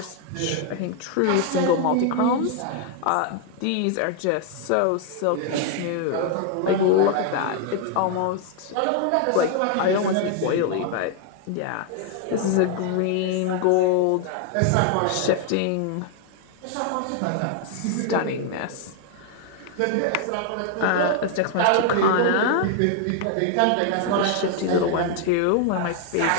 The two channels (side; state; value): both; different; correlation 0.00